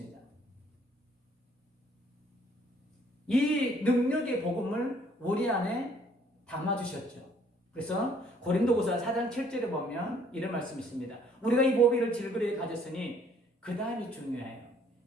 이 능력의 복음을 우리 안에 담아주셨죠. 그래서 고린도후서 4장 7절에 보면 이런 말씀이 있습니다. 우리가 이 보배를 질그레에 가졌으니 그 다음이 중요해요.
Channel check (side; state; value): both; normal; correlation 0.61